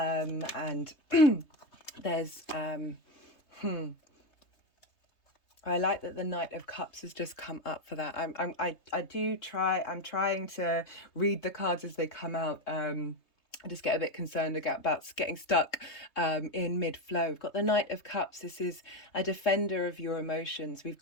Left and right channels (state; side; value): late; right; 3.2 ms